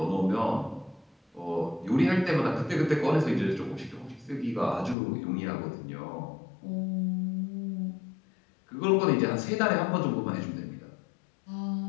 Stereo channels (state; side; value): drops out; right; at 5.0 s